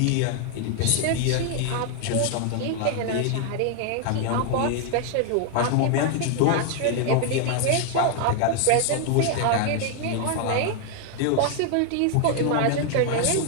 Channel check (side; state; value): both; different; correlation 0.00